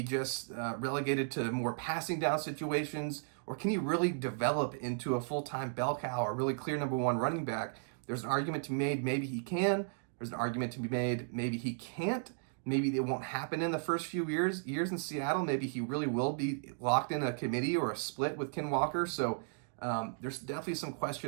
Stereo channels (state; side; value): silent; left; digital silence